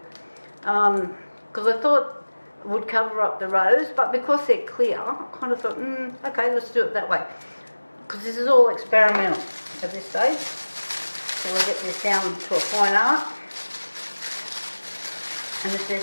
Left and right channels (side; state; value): both; inverted; correlation -1.00